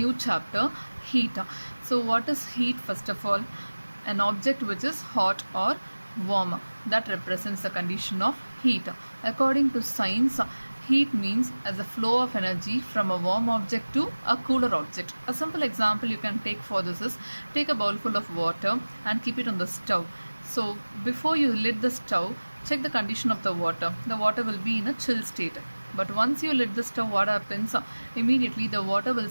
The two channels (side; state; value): both; inverted; correlation -1.00